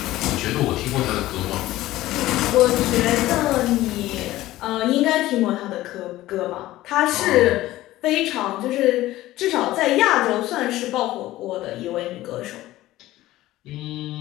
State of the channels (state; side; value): quieter; right; 16.1 dB